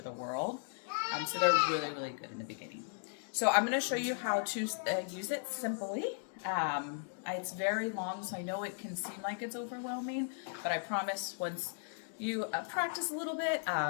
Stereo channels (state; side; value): silent; right; digital silence